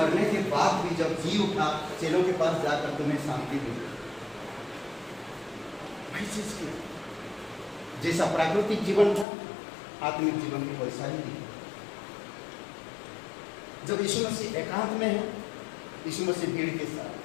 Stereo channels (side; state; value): right; drops out; at 9.2 s